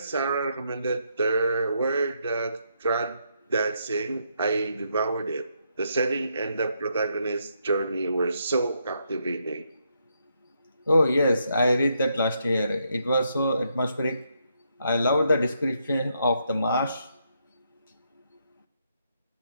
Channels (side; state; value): both; inverted; correlation -0.77